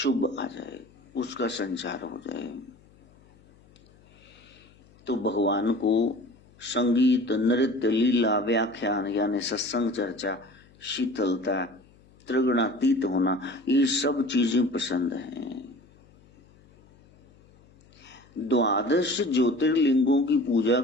आ जाए, उसका संचार हो जाए। तो भगवान को संगीत, नृत्य, लीला, व्याख्यान यानी सत्संग, चर्चा, शीतलता, त्रिगुणातीत होना, ये सब चीजें पसंद हैं। द्वादश ज्योतिर्लिंगों की पूजा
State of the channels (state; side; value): noise; left; hum, 28 dB below the sound